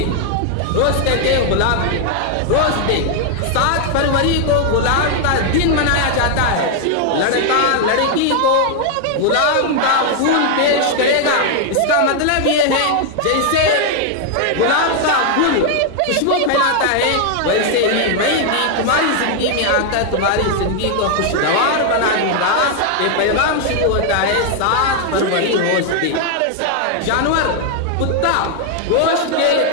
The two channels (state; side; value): different; both; correlation 0.00